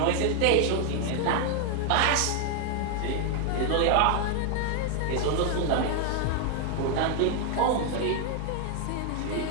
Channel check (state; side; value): different; both; correlation 0.00